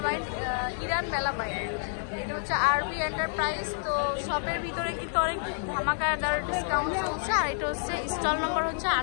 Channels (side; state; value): right; silent; 59 dB below the other